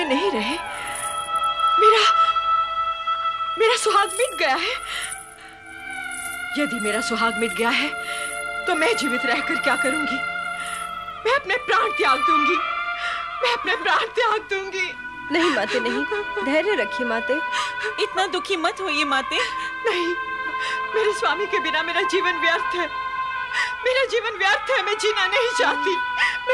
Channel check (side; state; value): both; identical; correlation 1.00